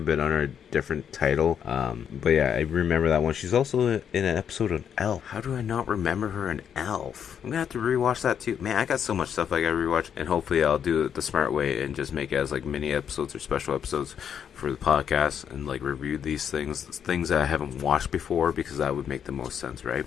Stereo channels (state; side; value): quieter; right; 8.2 dB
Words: been under a different title. But yeah, I remember that one. She's also in an episode of Elf. How do I not remember her in Elf? I'm gonna have to rewatch that too. Man, I got so much stuff I gotta rewatch, and hopefully I'll do it the smart way and just make it as like mini episodes or special episodes for the podcast, and like review these things that I haven't watched before, because that would make the most sense, right?